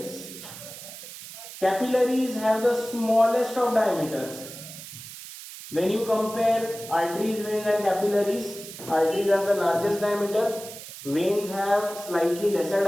Capillaries have the smallest of diameters. When you compare arteries, veins and capillaries, arteries have the largest diameter, veins have slightly lesser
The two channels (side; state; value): right; noise; hiss, 13 dB below the sound